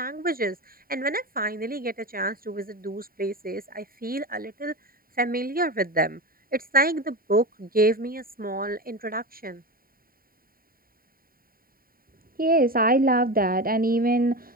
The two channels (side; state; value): left; late; 0.43 ms